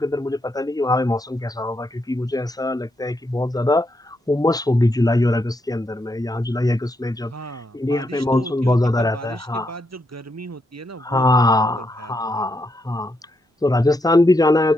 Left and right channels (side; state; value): both; normal; correlation 0.80